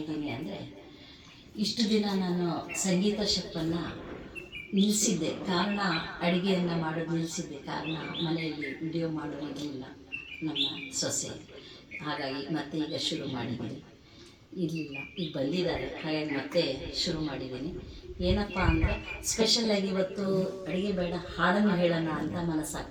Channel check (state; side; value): identical; both; correlation 1.00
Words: ಅಂದರೆ, ಇಷ್ಟು ದಿನ ನಾನು ಸಂಗೀತ ಶೆಫನ್ನು ನಿಲ್ಲಿಸಿದ್ದೆ. ಕಾರಣ ಅಡುಗೆಯನ್ನು ಮಾಡೋದು ನಿಲ್ಲಿಸಿದ್ದೆ. ಕಾರಣ ಮನೆಯಲ್ಲಿ ವಿಡಿಯೋ ಮಾಡೋದಿರಲಿಲ್ಲ ನಮ್ಮ ಸೊಸೆ. ಹಾಗಾಗಿ ಮತ್ತೆ ಈಗ ಶುರು ಮಾಡಿದ್ದೀನಿ. ಇರಲಿಲ್ಲ, ಈಗ ಬಂದಿದ್ದಾರೆ, ಹಾಗಾಗಿ ಮತ್ತೆ ಶುರು ಮಾಡಿದ್ದೀನಿ. ಏನಪ್ಪ ಅಂದರೆ, ಸ್ಪೆಷಲಾಗಿ ಇವತ್ತು ಅಡುಗೆ ಬೇಡ, ಹಾಡನ್ನು ಹೇಳೋಣ ಅಂತ